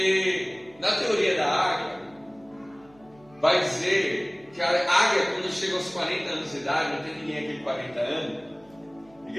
na teoria da águia, vai dizer que a águia, quando chega aos 40 anos de idade, não tem ninguém aqui com 40 anos,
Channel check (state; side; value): noise; right; hum, 29 dB below the sound